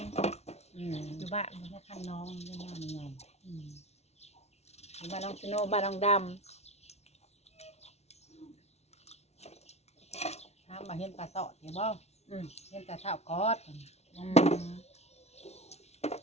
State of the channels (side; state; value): right; late; 0.31 ms